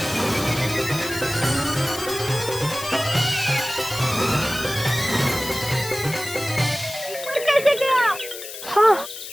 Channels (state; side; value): noise; left; hiss, 11 dB below the sound